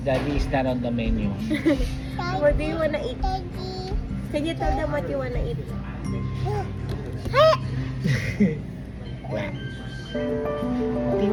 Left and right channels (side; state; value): both; identical; correlation 1.00